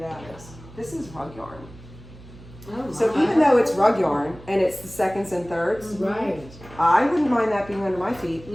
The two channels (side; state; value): right; noise; hum, 19 dB below the sound